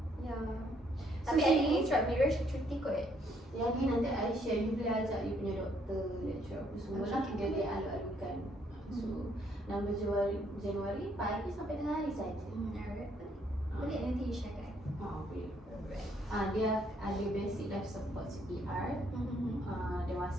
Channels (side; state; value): both; normal; correlation 0.69